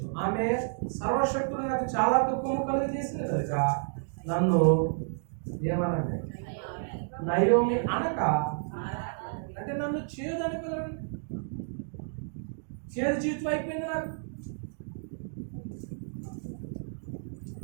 ఆమె సర్వశక్తులు నాకు చాలా దుఃఖము కలిగి చేసింది కనుక నన్ను ఏమనండి? నయోమి అనక. అంటే నన్ను చేదు అనుకోదండి. చేదు జీవితం అయిపోయింది. నాకు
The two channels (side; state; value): left; silent; digital silence